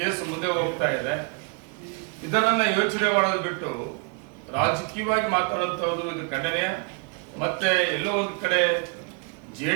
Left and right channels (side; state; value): left; quieter; 33.3 dB